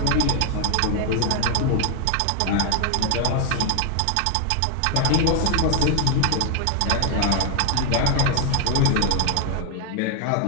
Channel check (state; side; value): different; both; correlation 0.01